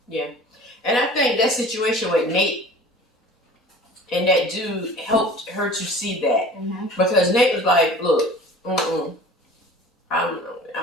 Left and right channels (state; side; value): normal; both; correlation 0.43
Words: Yeah. And I think that situation with Nate and that dude helped her to see that. Because Nate was like, look,